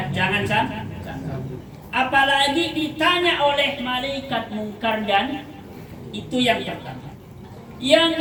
jangan sampai. Apalagi ditanya oleh malaikat mungkar dan itu yang pertama. Yang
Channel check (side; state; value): both; identical; correlation 1.00